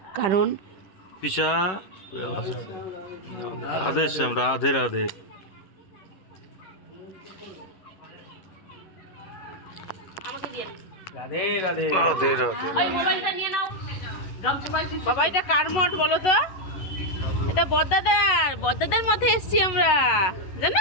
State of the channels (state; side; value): late; right; 11 ms